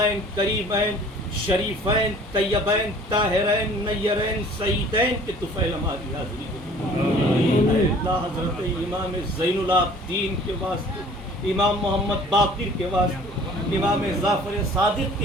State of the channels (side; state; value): both; normal; correlation 0.51